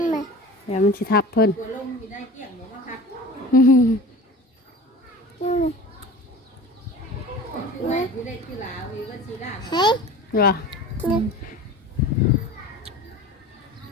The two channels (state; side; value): normal; both; correlation 0.38